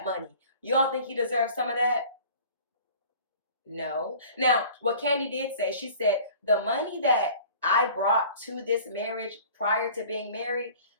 money? You don't think he deserves some of that? No. Now, what Kandi did say, she said, the money that I brought to this marriage prior to being married,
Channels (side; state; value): both; inverted; correlation -0.46